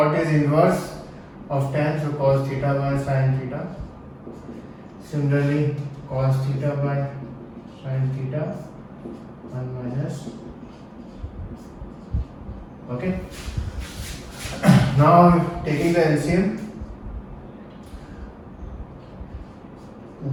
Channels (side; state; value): both; identical; correlation 1.00